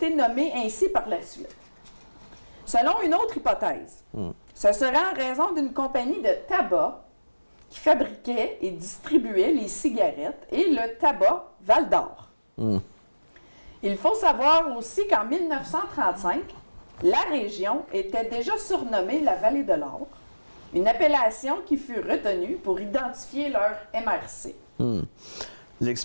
nommée ainsi par la suite. Selon une autre hypothèse, ce serait en raison d'une compagnie de tabac qui fabriquait et distribuait les cigarettes et le tabac Val-d'Or. Il faut savoir aussi qu'en 1935, la région était déjà surnommée la Vallée de l'Or, une appellation qui fut retenue pour identifier leur MRC.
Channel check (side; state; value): both; inverted; correlation -1.00